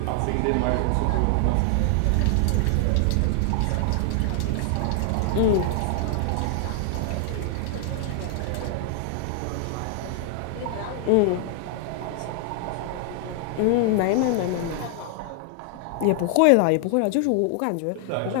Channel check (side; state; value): both; different; correlation 0.00